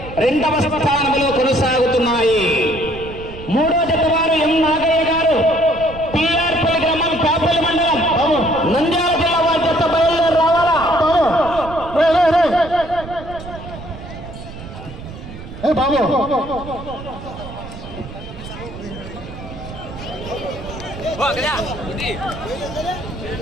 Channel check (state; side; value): noise; right; rumble, 13 dB below the sound